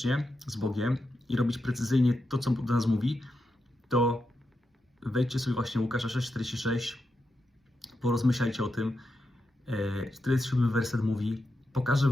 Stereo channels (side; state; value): both; normal; correlation 0.86